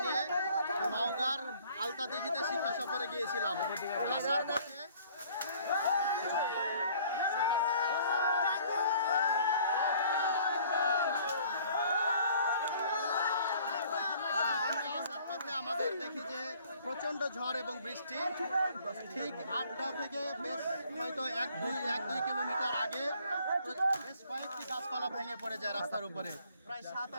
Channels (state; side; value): inverted; both; correlation -0.56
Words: নিয়ে নওগাঁর আলতাদিঘিতে শিক্ষা সফরে গিয়েছিলাম। আসার পথে আমাদের দেখি যে প্রচণ্ড ঝড় এবং বৃষ্টি। ঠিক আড্ডা থেকে বেশ হয়তো এক দুই কিলোমিটার আগে বেশ কয়েকটি গাছপালা ভেঙে পড়ে যায় রাস্তার উপরে। প্রায়